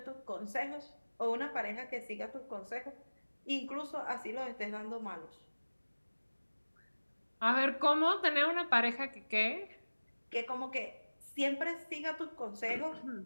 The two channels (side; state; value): both; inverted; correlation -1.00